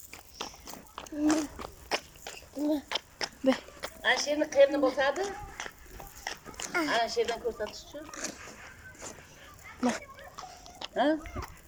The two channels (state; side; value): identical; both; correlation 1.00